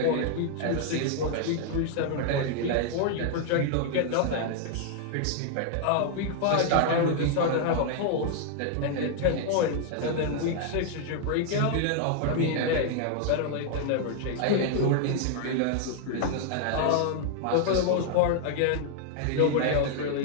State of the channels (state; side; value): different; both; correlation -0.01